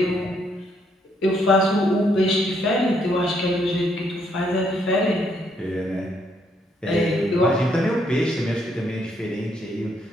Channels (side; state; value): both; normal; correlation 0.72